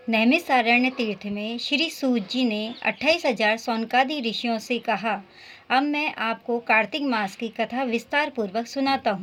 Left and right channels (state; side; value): identical; both; correlation 1.00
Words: नैमिषारण्य तीर्थ में श्री सूत जी ने 28,000 सौनकादि ऋषियों से कहा, अब मैं आपको कार्तिक मास की कथा विस्तार पूर्वक सुनाता